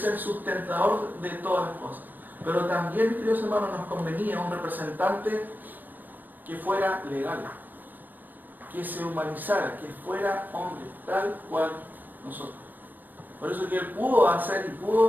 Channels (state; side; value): late; left; 0.087 ms